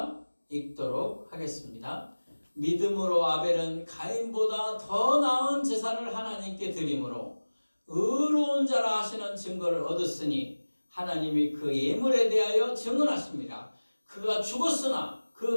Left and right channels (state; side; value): inverted; both; correlation -1.00